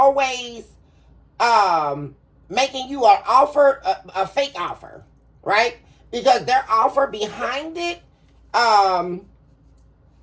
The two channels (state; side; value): identical; both; correlation 1.00